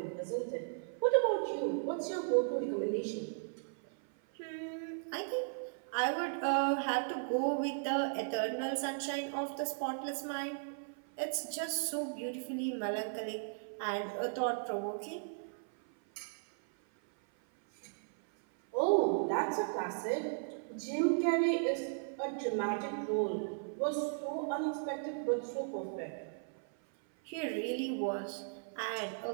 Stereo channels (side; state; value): left; silent; 54 dB below the other